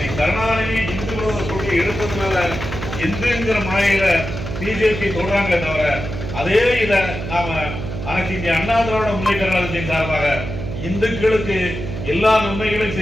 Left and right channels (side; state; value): right; noise; hum, 7 dB below the sound